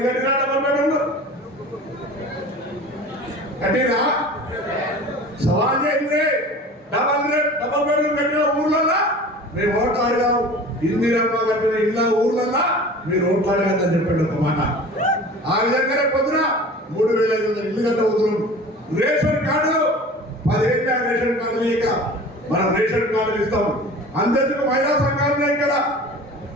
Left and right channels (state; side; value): normal; both; correlation 0.40